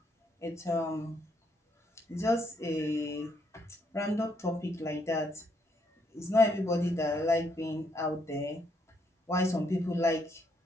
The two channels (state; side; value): normal; both; correlation 0.73